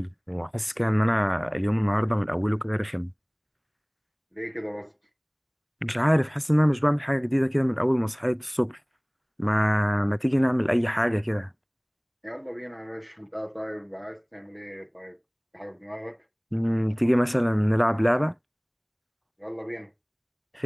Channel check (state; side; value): identical; both; correlation 1.00